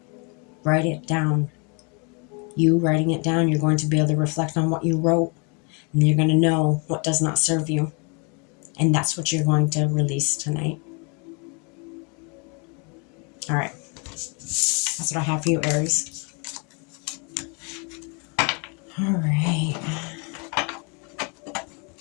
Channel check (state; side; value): quieter; right; 34.1 dB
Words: Write it down. You writing it down, you're going to be able to reflect on what you wrote, and you're going to know what does not serve you. And that's what you're going to release tonight. All right. That's what I have for you, Aries. All right.